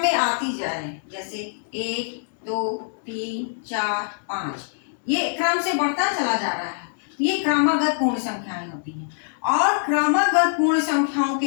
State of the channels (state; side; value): silent; right; 63 dB below the other